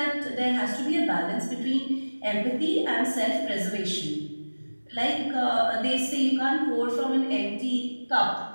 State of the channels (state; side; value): inverted; both; correlation -1.00